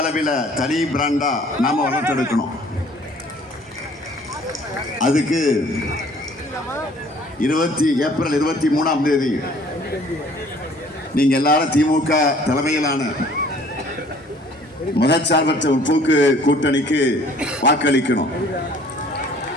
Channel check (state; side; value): normal; both; correlation 0.55